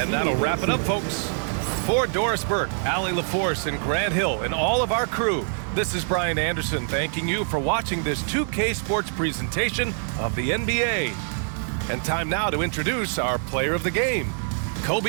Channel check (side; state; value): left; silent; digital silence